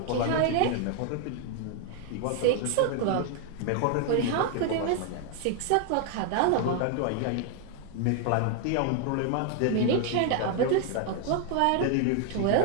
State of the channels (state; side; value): different; both; correlation 0.00